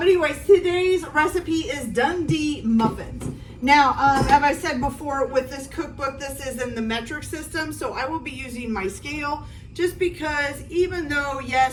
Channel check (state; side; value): identical; both; correlation 1.00